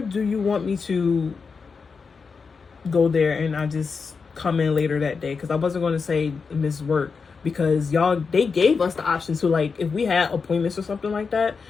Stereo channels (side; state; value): right; quieter; 5.2 dB